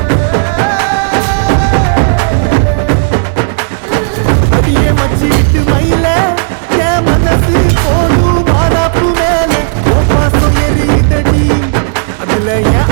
அடியே மச்சி விட்டு மயில என் மனசு போடு மாறாப்பு மேல ஓ பாசம் எரியுதடி அதுல என்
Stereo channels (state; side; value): silent; left; digital silence